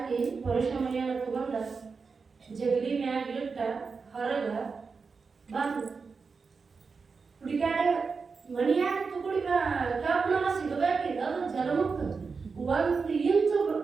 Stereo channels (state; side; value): quieter; left; 4.9 dB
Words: ಪುರುಷ ಮನೆಯನ್ನು ತಗೊಂಡ ಜಗಲಿ ಮ್ಯಾಗ ಇಟ್ಟ ಹೊರಗ ಬಂದು ಹುಡುಗಾಡ ಮನೆಯಾಗ ತುಗುಡಿ ಕಬ್ಬನ ಸಿಗಬೇಕಿಲ್ಲ, ಅದು ಜಲಮುಕ್ತ 1 ಇಂಚು